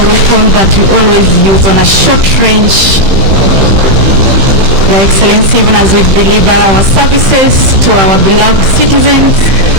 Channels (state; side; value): late; left; 15 ms